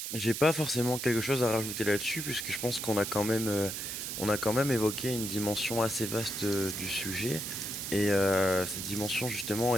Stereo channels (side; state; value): right; noise; hiss, 5 dB below the sound